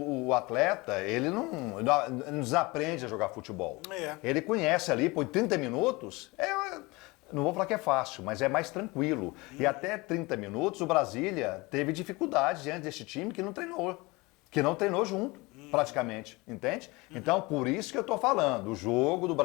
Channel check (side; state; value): right; quieter; 24.0 dB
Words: atleta, ele não desaprende a jogar futebol. Ele conhece ali, por 30 minutos, não vou falar que é fácil, mas é mais tranquilo. E até 30 minutos o Brasília teve dificuldade diante desse time que não treinou junto. Praticamente, entende? Então, por isso que eu estou falando, o jogo do